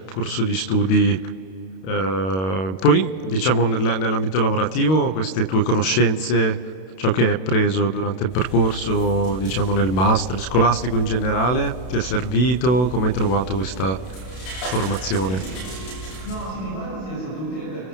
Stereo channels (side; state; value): right; late; 32 ms